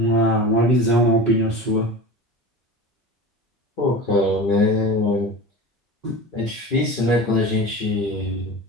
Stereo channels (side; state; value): both; normal; correlation 0.31